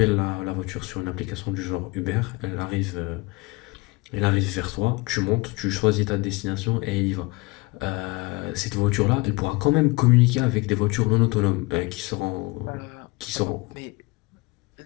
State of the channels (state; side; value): quieter; right; 24.7 dB